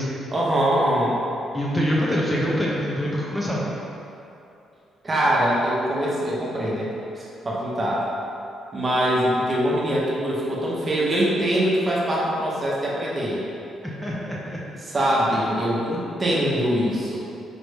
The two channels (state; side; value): normal; both; correlation 0.79